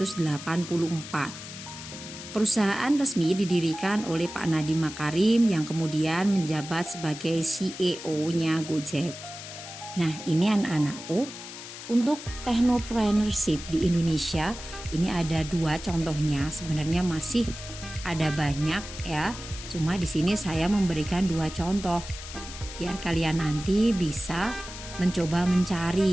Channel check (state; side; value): noise; left; hiss, 12 dB below the sound